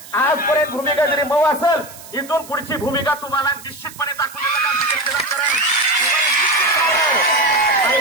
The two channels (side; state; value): right; noise; hiss, 18 dB below the sound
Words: आजपर्यंत भूमिका जरी मऊ असेल इथून पुढची भूमिका तुम्हाला निश्चितपणे दाखवून आणि